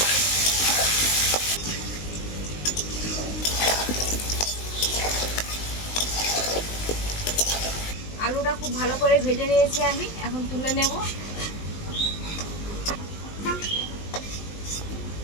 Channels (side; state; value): right; late; 19 ms